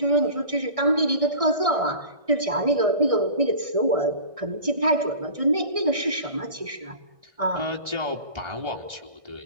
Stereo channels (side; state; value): left; late; 1.6 ms